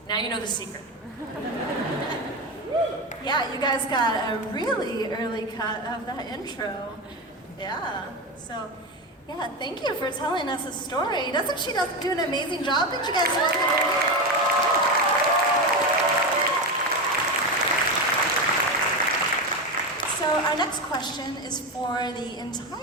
now you know the secret. Yeah, you guys got a really early cut of that intro. Yeah, so, yeah, thank you for telling us a story. Doesn't she do an amazing job? Did you guys like it? So our next question is for the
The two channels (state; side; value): normal; both; correlation 0.17